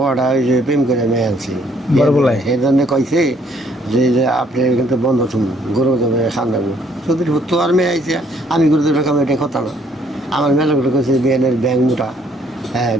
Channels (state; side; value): normal; both; correlation 0.65